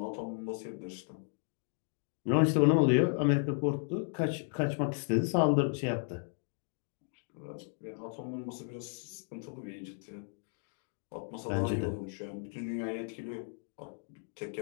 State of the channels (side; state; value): right; silent; 55 dB below the other